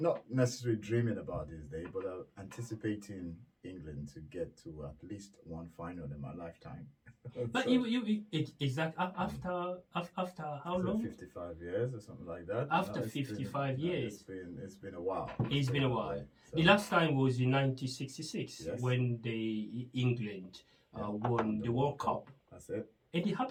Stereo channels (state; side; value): identical; both; correlation 1.00